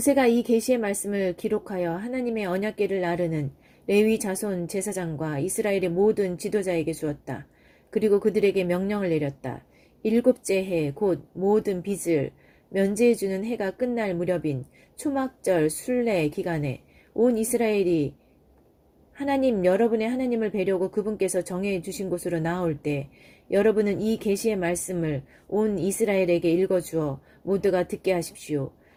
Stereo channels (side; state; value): both; identical; correlation 1.00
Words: 이 계시의 말씀을 기록하여 하나님의 언약궤를 나르는 레위 자손 제사장과 이스라엘의 모든 지도자에게 주었다. 그리고 그들에게 명령을 내렸다. 7째 해 곧 모든 빚을 면제해주는 해가 끝날 무렵인 초막절 순례 기간에 온 이스라엘이 하나님 여러분의 하나님을 뵈려고 그분께서 정해 주신 곳으로 나올 때 여러분은 이 계시의 말씀을 온 이스라엘에게 읽어주어 모두가 듣게 하십시오.